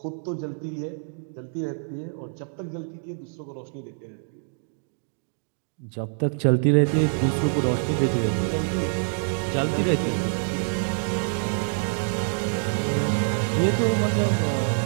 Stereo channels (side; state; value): left; silent; digital silence